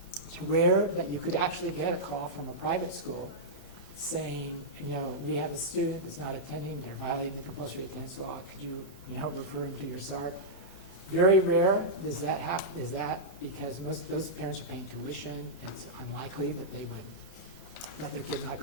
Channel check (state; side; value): normal; both; correlation -0.10